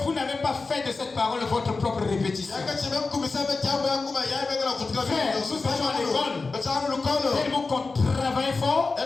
vous n'avez pas fait de cette parole votre propre répétition. Frère, nous étions à l'école, tellement qu'on travaillait fort,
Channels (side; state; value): right; quieter; 4.0 dB